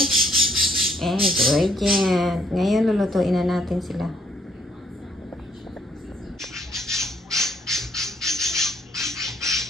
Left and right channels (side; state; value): both; normal; correlation 0.67